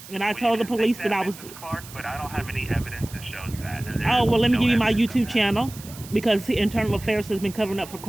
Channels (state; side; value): noise; right; hiss, 16 dB below the sound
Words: and I Well, you told the can think police that, that I was. Mrs. Clark, but I don't have any evidence that shows that. There Oh, is well, let me no give you my evidence of YouTube that. channel, because the internal affairs has been covering up for